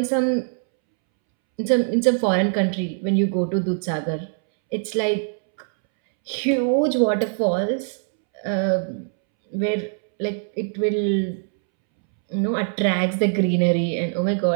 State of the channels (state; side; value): silent; left; 64 dB below the other